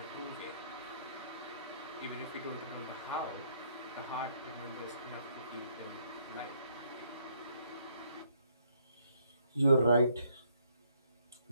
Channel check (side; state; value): both; inverted; correlation -0.69